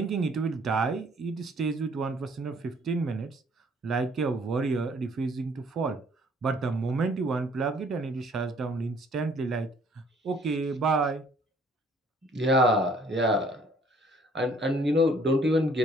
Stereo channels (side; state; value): both; normal; correlation 0.60